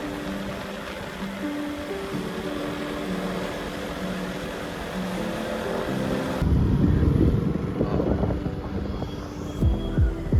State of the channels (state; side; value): identical; both; correlation 1.00